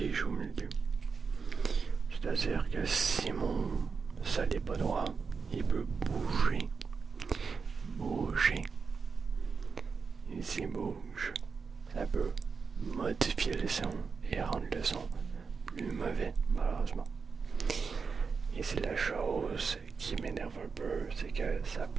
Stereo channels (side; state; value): left; quieter; 5.3 dB